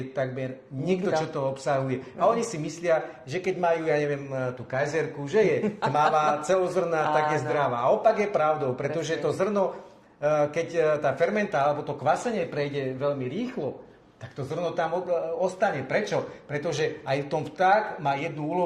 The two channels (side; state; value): both; identical; correlation 1.00